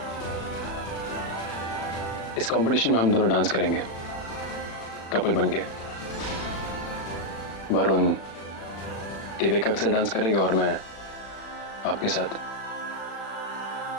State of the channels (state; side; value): late; right; 36 ms